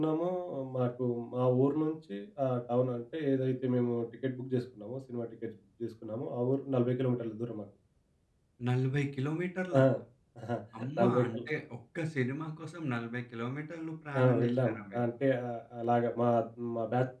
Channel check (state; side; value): identical; both; correlation 1.00